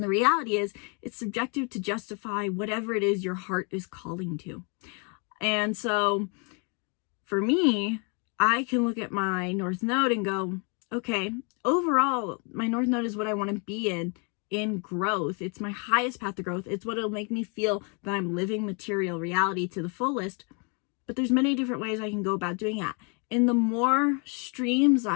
the reality is it's subjective to justify whatever it is your heart is calling to. And so for me, I can look at my North Node and go, okay, overall, my North Node is what I want to be in growth. It's my highest path to growth. It's what will make me feel that I'm living material reality to the fullest. But there's many different ways I can go about doing that. And the more streams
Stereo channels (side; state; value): right; quieter; 35.2 dB